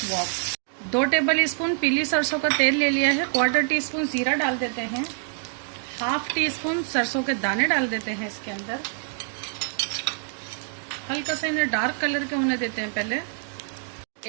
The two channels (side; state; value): left; silent; 58 dB below the other